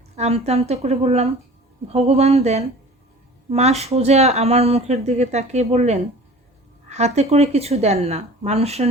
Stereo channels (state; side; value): normal; both; correlation 0.43